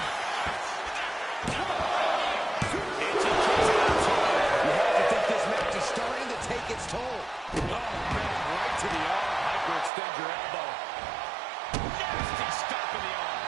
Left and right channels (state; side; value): drops out; left; at 9.9 s